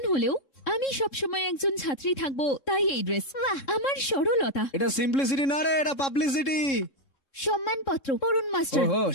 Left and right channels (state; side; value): late; right; 3.7 ms